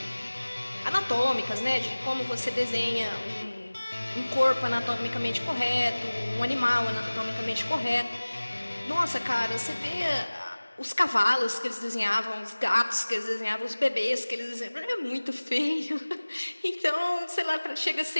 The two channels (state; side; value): inverted; both; correlation -1.00